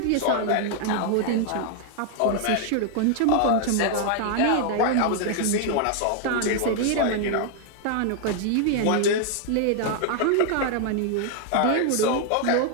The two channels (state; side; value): different; both; correlation 0.00